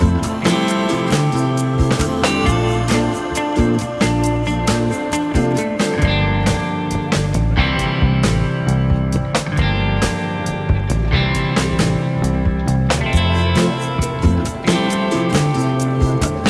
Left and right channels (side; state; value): both; identical; correlation 1.00